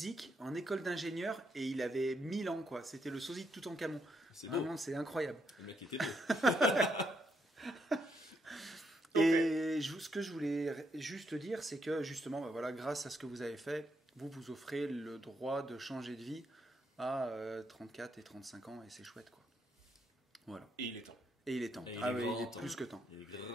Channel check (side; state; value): both; normal; correlation 0.78